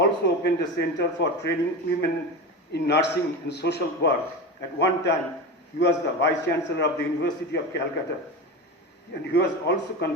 opened a center for training women in nursing and social work. At one time, he was the Vice Chancellor of the University of Calcutta. And he was also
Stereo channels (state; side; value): normal; both; correlation 0.24